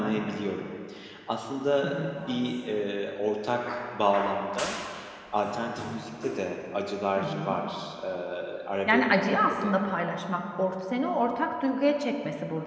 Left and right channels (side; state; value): both; identical; correlation 1.00